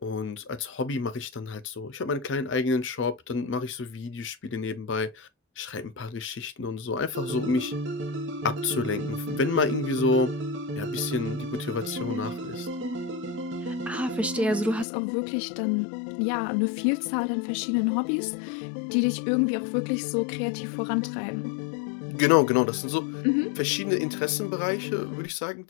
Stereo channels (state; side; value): drops out; right; at 14.9 s